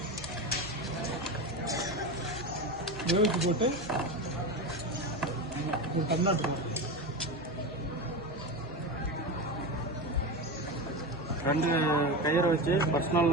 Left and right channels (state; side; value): normal; both; correlation 0.21